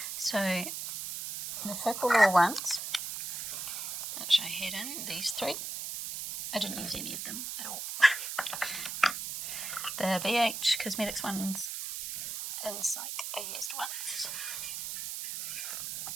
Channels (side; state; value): right; noise; hiss, 5 dB below the sound